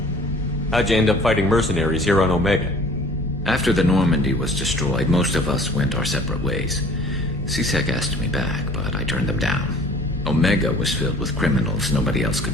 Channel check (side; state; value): both; normal; correlation 0.50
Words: How'd you end up fighting mercenaries here on Omega? After the Normandy was destroyed, most of us went our separate ways. CSEC asked me back, but I turned them down. Omega was filled with criminals nobody else